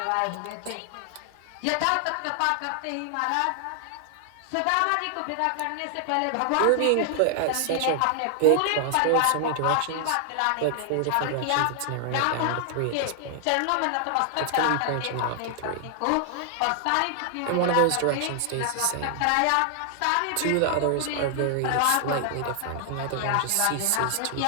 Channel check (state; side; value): different; both; correlation 0.00